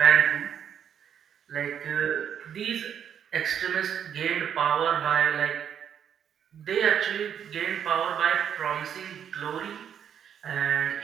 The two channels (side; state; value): left; quieter; 8.6 dB